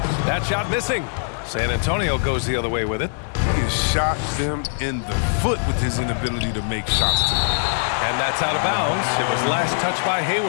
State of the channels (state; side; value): silent; right; digital silence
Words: That shot missing. San Antonio goes the other way with it. He has shot them in the foot with his inability to make shots tonight. And that's out of bounds. It was last touched by